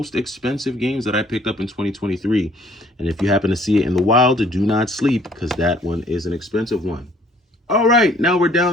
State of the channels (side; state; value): both; normal; correlation 0.59